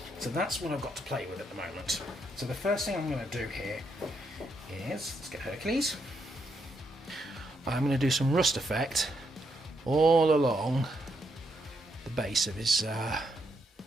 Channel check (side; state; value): both; normal; correlation 0.78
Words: So that's what I've got to play with at the moment. So the first thing I'm going to do here is, let's get Hercules. I'm going to do some rust effect all along the base of his